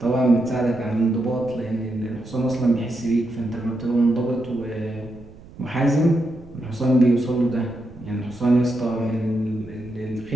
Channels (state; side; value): noise; right; rumble, 20 dB below the sound